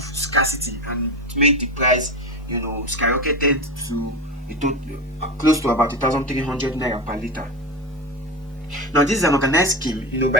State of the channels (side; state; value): both; normal; correlation 0.22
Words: scarcity, and it made the price, skyrocketed to close to about 1,300 naira per liter. Now, this is an organized scheme,